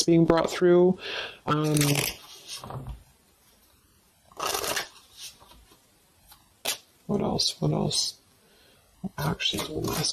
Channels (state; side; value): identical; both; correlation 1.00